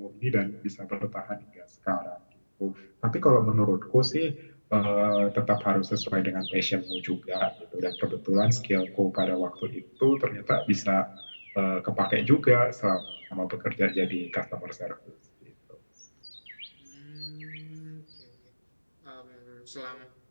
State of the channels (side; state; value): both; inverted; correlation -1.00